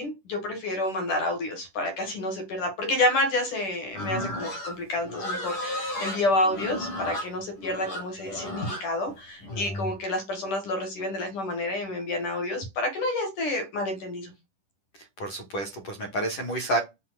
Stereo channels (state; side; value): late; right; 10 ms